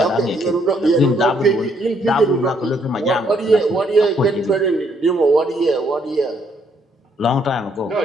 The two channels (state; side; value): normal; both; correlation 0.70